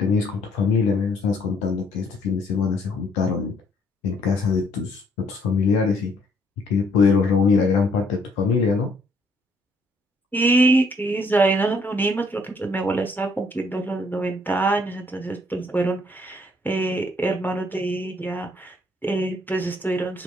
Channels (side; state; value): both; normal; correlation 0.67